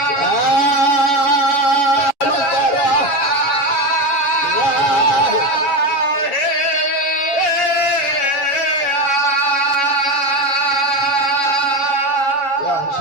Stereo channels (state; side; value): late; right; 7.2 ms